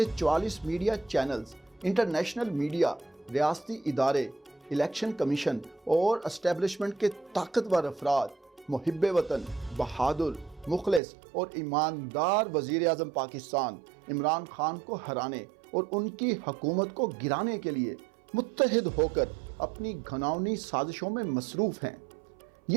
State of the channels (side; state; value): left; drops out; at 11.0 s